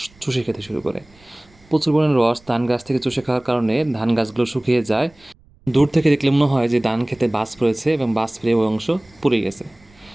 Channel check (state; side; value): noise; right; rumble, 29 dB below the sound